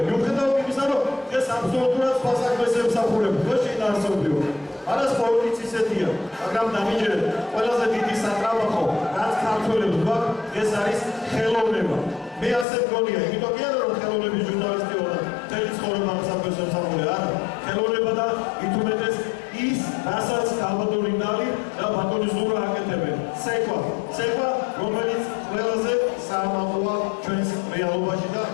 მიუხედავად იმისა, რომ ეს აბსოლუტურად სხვა საქმეს ემსახურება, ხო შეინარჩუნებიო. არა სპორტიც ისეთია, მაგრამ დამიჯერეთ, ყველაზე დიდი სატრაბახო, რაც ქართველებს გვაქვს, ეს არის ხელოვნება. მე ასე მგონია, იმიტომ კი არა რომ ხელოვნების ჟურნალისტი ვარ და მთელი ცხოვრება ამ საქმეს ემსახურე, არა. ხელოვნება და ითუმეტეს ის, რასაც გაბატონინდალი და ბატონი ზურა აკეთებენ. ცეკვა, რომელიც ყველაზე საამაყოა ჩვენს რეალობაში და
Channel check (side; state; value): right; drops out; at 12.7 s